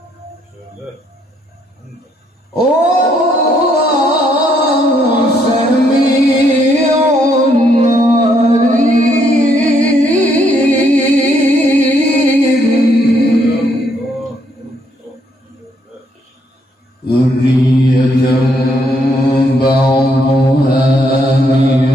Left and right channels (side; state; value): both; normal; correlation 0.71